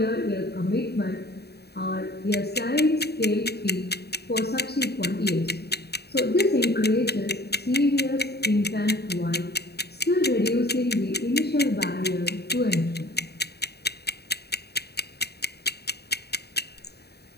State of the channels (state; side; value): late; right; 0.47 ms